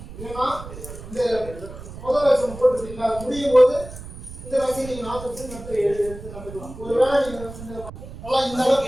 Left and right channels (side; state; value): right; noise; rumble, 13 dB below the sound